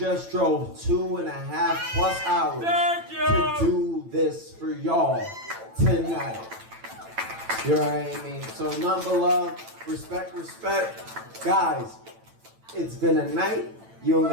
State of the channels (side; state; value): left; late; 9.0 ms